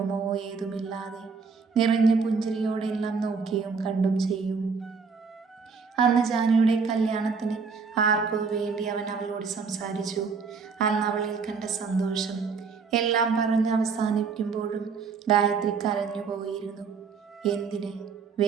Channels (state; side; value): quieter; left; 5.3 dB